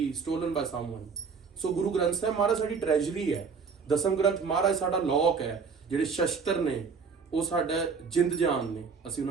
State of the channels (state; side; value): quieter; left; 5.5 dB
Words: stolen by someone. So Guru Granth Sahib ਮਹਾਰਾਜ ਸਾਡੀ ਟ੍ਰੈਜਰੀ ਹੈ, ਦਸਮ ਗ੍ਰੰਥ ਮਹਾਰਾਜ ਸਾਡਾ ਲੋਕ ਹੈ। ਜਿਹੜੇ ਸ਼ਸਤਰ ਨੇ ਉਹ ਸਾਡਾ ਜਿੰਦ ਜਾਨ ਨੇ, ਅਸੀਂ